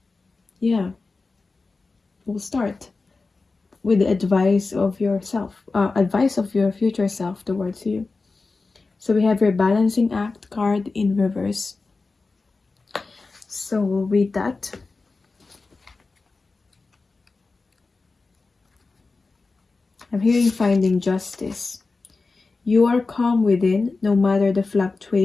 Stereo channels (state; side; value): quieter; right; 3.9 dB